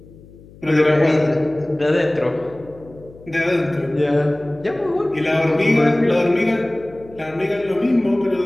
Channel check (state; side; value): noise; left; hum, 22 dB below the sound